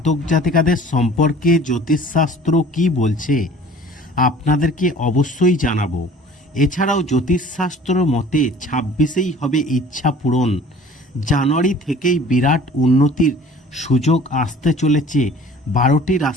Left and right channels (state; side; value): normal; both; correlation 0.48